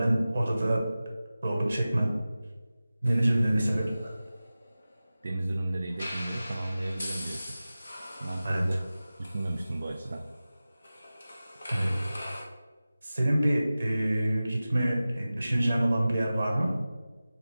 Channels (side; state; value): both; inverted; correlation -0.96